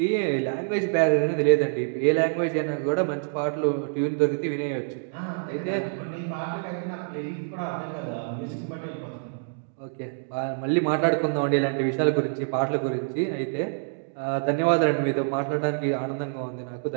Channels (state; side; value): silent; left; digital silence